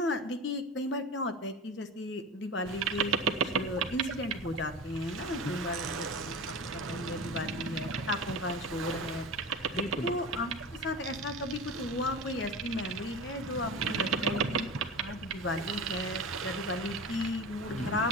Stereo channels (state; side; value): normal; both; correlation 0.30